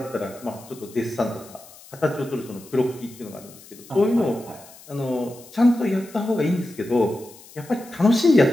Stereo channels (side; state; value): left; noise; hiss, 21 dB below the sound